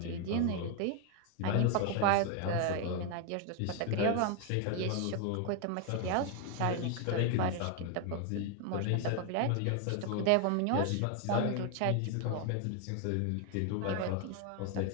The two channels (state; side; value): different; both; correlation 0.01